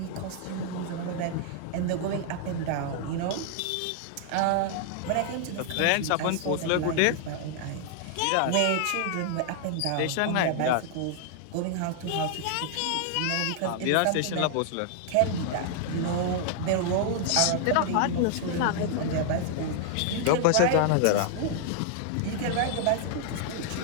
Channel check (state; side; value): different; both; correlation 0.00